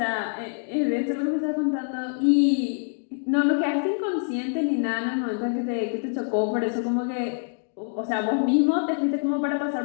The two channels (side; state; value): right; silent; digital silence